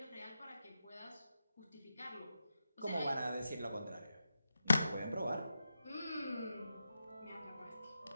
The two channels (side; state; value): both; inverted; correlation -0.89